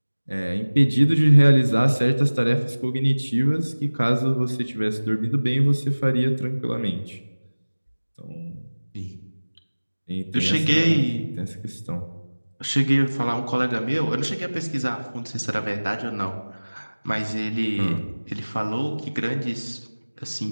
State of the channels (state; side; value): inverted; both; correlation -1.00